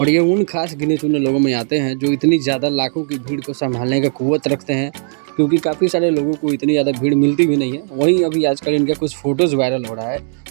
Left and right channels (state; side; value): silent; left; 68 dB below the other